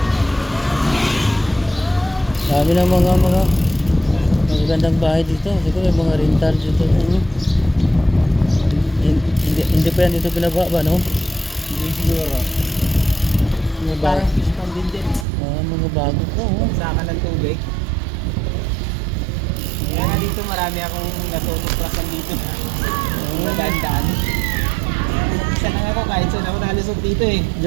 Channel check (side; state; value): left; drops out; at 15.2 s